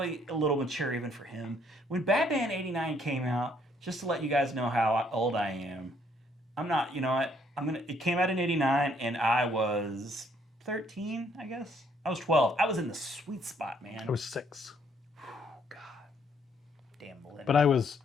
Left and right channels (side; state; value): both; normal; correlation 0.67